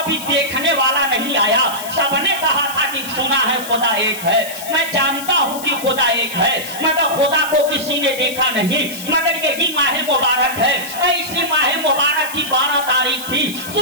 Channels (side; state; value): left; noise; hiss, 11 dB below the sound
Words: دیکھنے والا نہیں آیا۔ سب نے کہا تھا کہ سنا ہے خدا ایک ہے، میں جانتا ہوں کہ خدا ایک ہے، مگر خدا کو کسی نے دیکھا نہیں۔ مگر یہی ماہ مبارک ہے، اسی ماہ مبارک کی 12 تاریخ تھی،